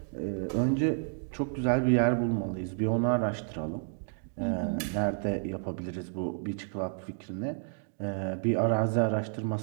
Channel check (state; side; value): silent; left; digital silence